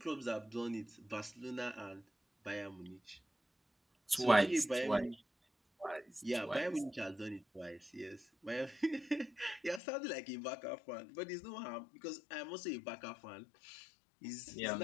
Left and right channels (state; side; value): drops out; right; at 9.8 s